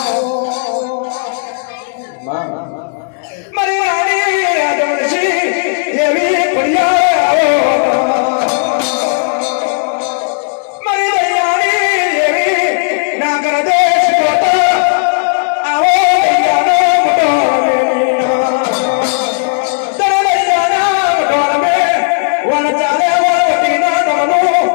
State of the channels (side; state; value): right; silent; 61 dB below the other